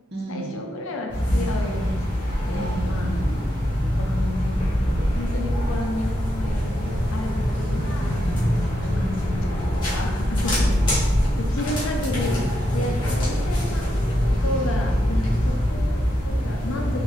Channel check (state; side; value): normal; both; correlation 0.84